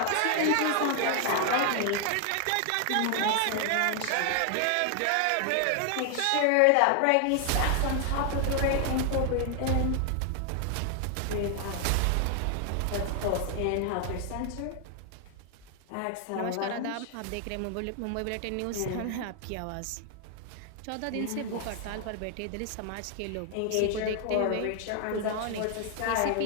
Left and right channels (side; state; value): both; different; correlation 0.00